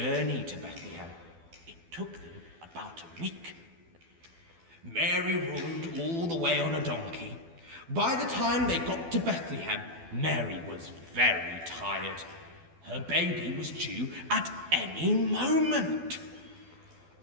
to Bethlehem. It took them about a week. Mary rode all the way on a donkey. By the time they got to Bethlehem, Mary was very tired. Her baby was due at any moment.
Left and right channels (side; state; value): left; late; 12 ms